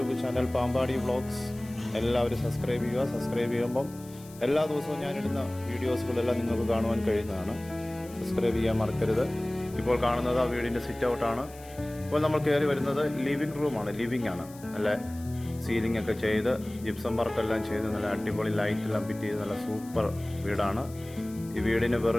ചാനൽ പാമ്പാടി വ്ളോഗ്സ് എല്ലാവരും സബ്സ്ക്രൈബ് ചെയ്യുക. സബ്സ്ക്രൈബ് ചെയ്യുമ്പം എല്ലാ ദിവസവും ഞാനിടുന്ന വീഡിയോസുകളെല്ലാം നിങ്ങൾക്ക് കാണുവാൻ കഴിയുന്നതാണ്. സബ്സ്ക്രൈബ് ചെയ്യാൻ മറക്കരുത്. ഇപ്പോൾ കാണുന്നത് ആ വീടിൻ്റെ സിറ്റ് ഔട്ടാണ്. ഇപ്പോൾ നമ്മൾ കയറി വരുന്നത് ലിവിങ് റൂമാണ്. ലിവിങ് ആണ്. നല്ല സീലിംഗ് ഒക്കെ ചെയ്ത് ജിപ്സം വർക്കെല്ലാം ചെയ്ത് നല്ല അടിപൊളി ലൈറ്റെല്ലാം ഫിറ്റ് ചെയ്ത് നല്ല സൂപ്പർ വീടാണ്. ഈ വീടിന്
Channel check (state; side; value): noise; left; hiss, 21 dB below the sound